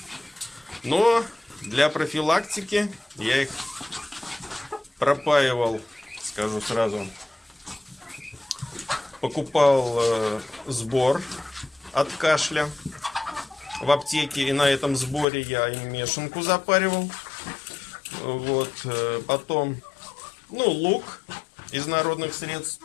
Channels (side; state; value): right; drops out; at 15.2 s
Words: Но для профилактики я их пропаивал, скажу сразу. Покупал сбор от кашля в аптеке. И на этом сборе я им мешанку запаривал. Вот. Потом, ну, лук из народных средств.